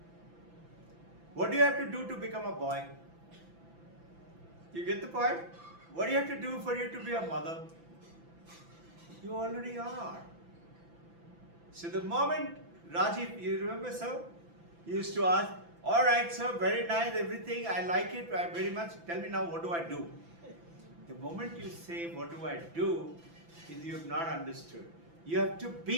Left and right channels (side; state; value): left; late; 5.9 ms